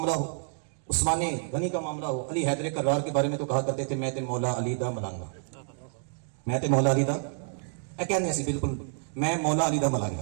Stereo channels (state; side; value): silent; left; 59 dB below the other